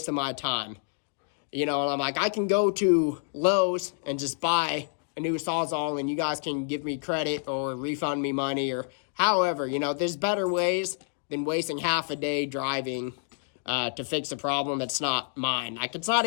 of my time. You know, and I'm like, I can go to Lowe's and just buy a new Sawzall and you guys can give me credit or refund me money or however, you know, there's better ways than wasting half a day driving to fix a problem that's not mine. Like, it's not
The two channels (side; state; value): right; silent; digital silence